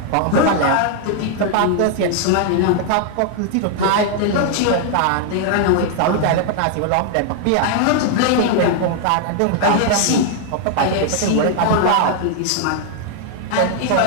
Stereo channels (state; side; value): different; both; correlation 0.00